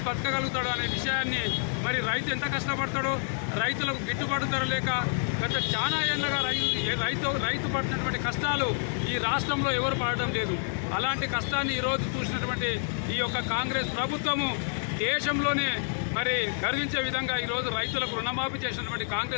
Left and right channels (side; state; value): right; silent; 59 dB below the other